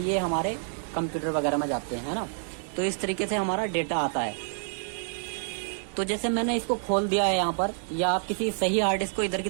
हमारे कंप्यूटर वगैरह में जाते हैं, है ना। तो इस तरीके से हमारा डेटा आता है। तो जैसे मैंने इसको खोल दिया है यहाँ पर, या आप किसी सही हार्ड डिस्क को इधर की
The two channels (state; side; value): silent; left; digital silence